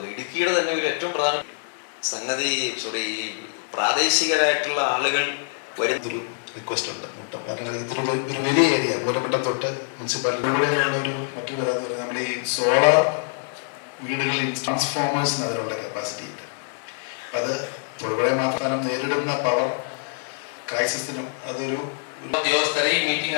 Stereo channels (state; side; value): silent; right; digital silence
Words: ഇടുക്കിയുടെ തന്നെ ഒരു ഏറ്റവും പ്രധാന സംഗതി ഈ പ്രാദേശികരായിട്ടുള്ള ആളുകൾ ഒരു റിക്വസ്റ്റ് ഉണ്ട് മുട്ടം. കാരണം ഇതൊരു ഒരു വലിയ ഏരിയ മൂലമട്ടം തൊട്ട് മുനിസിപ്പാലിറ്റിയുള്ള ഒരു മറ്റൊരു കാര്യം എന്ന് പറയുന്നത് നമ്മുടെ ഈ സോളാർ വീടുകളിൽ ട്രാൻസ്ഫോമേഴ്സിന് അതിനുള്ള കപ്പാസിറ്റി ഇല്ല. അത് തൊഴിലുറപ്പ് മാത്രം നേരിടുന്ന പവർ ക്രൈസിസിനും അതൊരു ഉദ്യോഗസ്ഥരെ ഈ മീറ്റിംഗ്